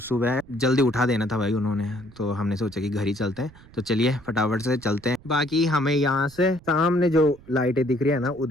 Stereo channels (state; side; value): noise; right; rumble, 23 dB below the sound